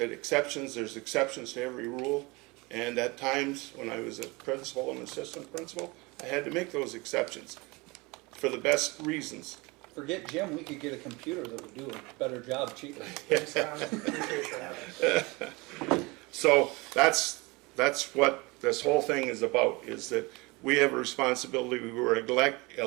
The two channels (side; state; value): left; quieter; 25.2 dB